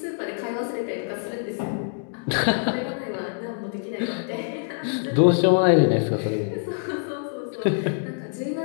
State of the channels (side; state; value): right; silent; digital silence